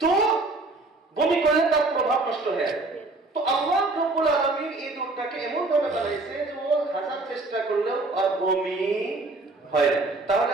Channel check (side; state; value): left; quieter; 3.2 dB